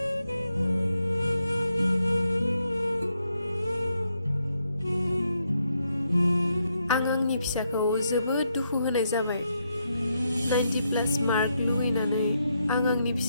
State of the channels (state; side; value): inverted; both; correlation -0.79